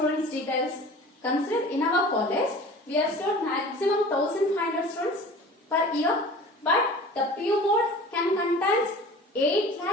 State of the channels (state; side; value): normal; both; correlation 0.41